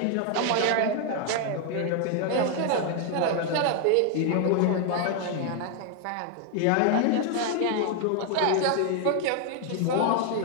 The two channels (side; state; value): both; different; correlation 0.00